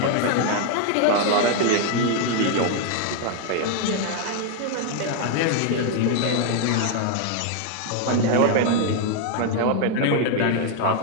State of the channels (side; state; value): both; different; correlation 0.00